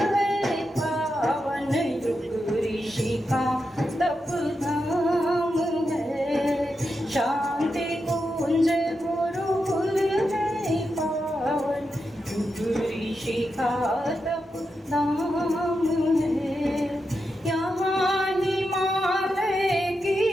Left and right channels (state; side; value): normal; both; correlation 0.87